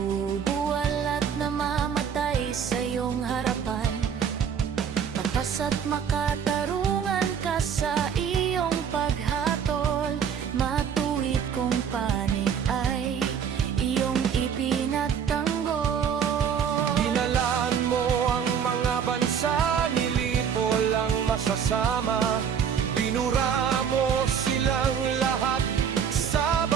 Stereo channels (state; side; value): quieter; left; 7.7 dB